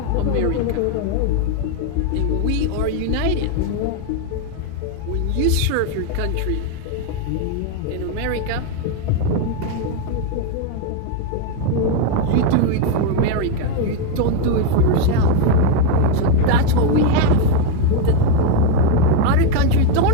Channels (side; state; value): both; different; correlation 0.01